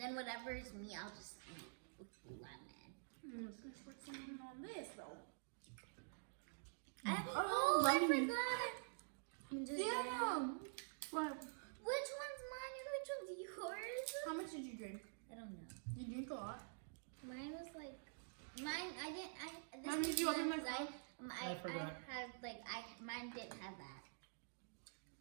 then whatever is me, I'll just eat with lemon. Let's put some on this though. I forgot. I'm just What? Which one's mine and which one's yours? How much did you drink? I don't know. You drink a lot. Mine was like mine. I didn't. This Mom, is did you open my mine 'cause phone? I forgot. had mine didn't have that,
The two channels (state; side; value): silent; left; digital silence